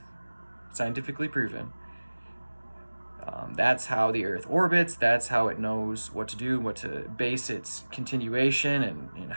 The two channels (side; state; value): both; inverted; correlation -1.00